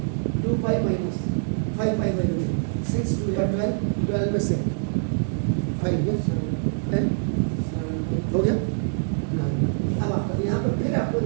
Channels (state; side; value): silent; left; 62 dB below the other